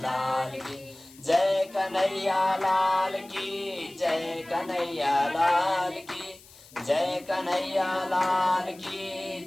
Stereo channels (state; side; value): noise; left; hiss, 23 dB below the sound